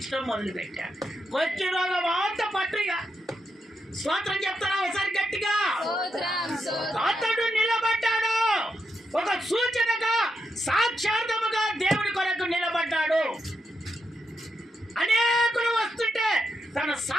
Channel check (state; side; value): normal; both; correlation 0.84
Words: మొదలుపెట్టాడు. కొంచెం రోగం అంత పట్టుగా స్తోత్రం చెప్తారా ఒకసారి గట్టిగా? అతడు నిలబడ్డాడు, ఒక సూచనగా సాక్షార్థముగా దేవుడి కొరకు నిలబడ్డాడు. అనేకులు వస్తుంటే తన